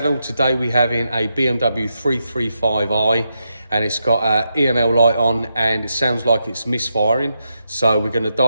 Today we have in a BMW 335i and it's got an EML light on and it sounds like it's misfiring. So we're going to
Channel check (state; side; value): inverted; both; correlation -0.85